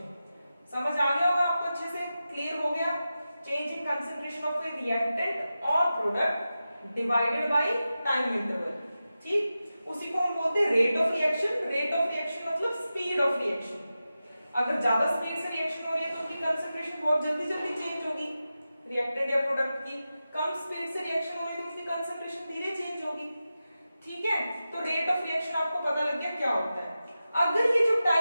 समझ आ गया होगा आपको, अच्छे से क्लियर हो गया। Change in concentration of a reactant और product divided by time interval, ठीक, उसी को हम बोलते हैं rate of reaction. Rate of reaction मतलब स्पीड ऑफ रिएक्शन। अगर ज्यादा स्पीड से रिएक्शन हो रही है तो उनकी कंसंट्रेशन बहुत जल्दी जल्दी चेंज होगी रिएक्टेंट या प्रोडक्ट की। कम स्पीड से रिएक्शन हो रही है तो उसकी कंसंट्रेशन धीरे चेंज होगी। ठीक है, तो रेट ऑफ रिएक्शन आपको पता लग गया क्या होता है। अगर ये जो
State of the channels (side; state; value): both; inverted; correlation -0.93